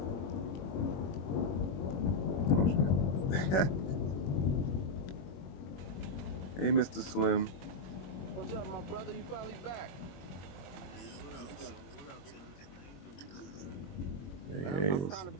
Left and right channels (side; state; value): right; late; 21 ms